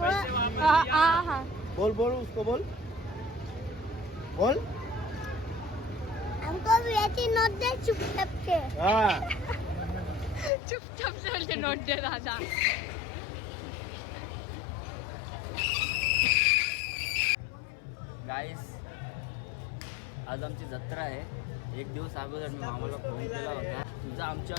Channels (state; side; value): drops out; right; at 10.5 s